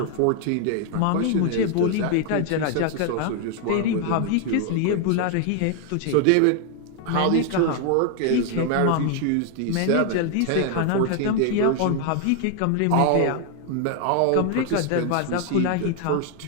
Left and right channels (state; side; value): different; both; correlation 0.00